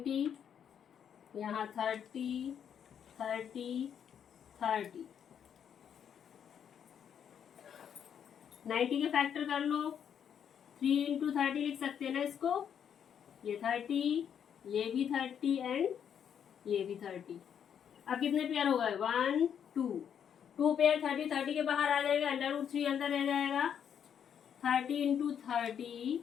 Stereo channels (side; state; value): right; quieter; 8.4 dB